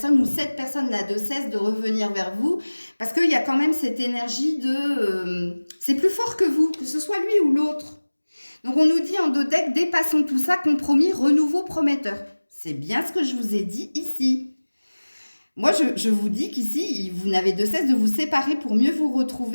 ou cette personne n'a de cesse de revenir vers vous, parce qu'il y a quand même cette énergie de... c'est plus fort que vous, que ce soit lui ou l'autre. Donc, on nous dit en dos deck, dépassons tout ça, compromis, renouveau prometteur. C'est bien ce que je vous ai dit ici. Moi, je vous dis qu'ici, vous n'avez de cesse de vous séparer pour mieux vous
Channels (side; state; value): both; inverted; correlation -1.00